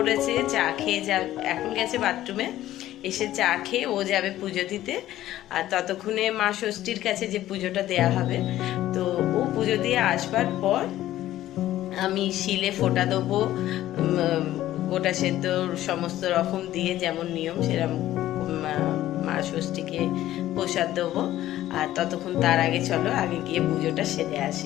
চা খেয়ে এখন গেছে বাথরুমে, এসে চা খেয়ে ও যাবে পুজো দিতে। আর ততক্ষণে মা ষষ্ঠীর কাছে যে পুজোটা দেয়া হবে, তো ও পুজো দিয়ে আসবার পর আমি শিলে ফোঁটা দেবো, গোটা সেদ্ধ সমস্ত রকম দিয়ে যেমন নিয়ম সেরকম মা ষষ্ঠীকে প্রসাদ দেবো। আর ততক্ষণ তার আগে চলো আগে গিয়ে পুজোটা সেরে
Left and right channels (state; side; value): quieter; right; 14.0 dB